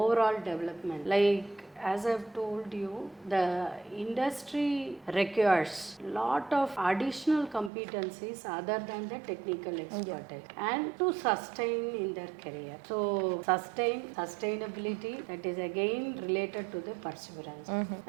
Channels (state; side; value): drops out; left; at 7.7 s